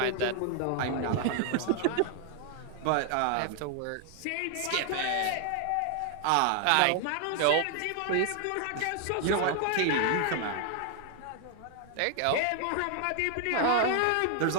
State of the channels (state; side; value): different; both; correlation 0.00